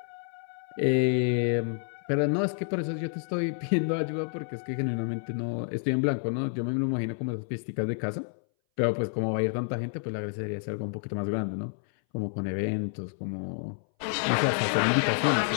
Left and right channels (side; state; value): right; silent; 58 dB below the other